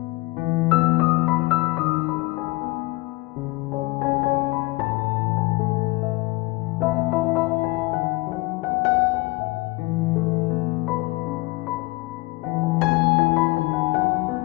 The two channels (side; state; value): right; quieter; 22.4 dB